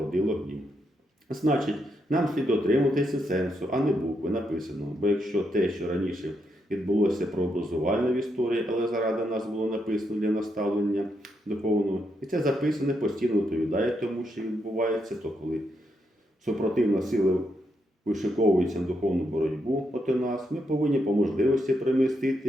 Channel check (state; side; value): normal; both; correlation 0.80